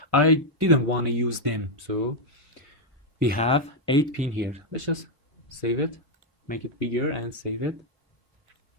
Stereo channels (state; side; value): normal; both; correlation 0.00